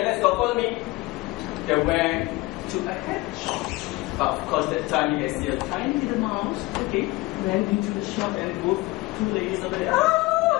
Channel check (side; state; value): right; quieter; 21.4 dB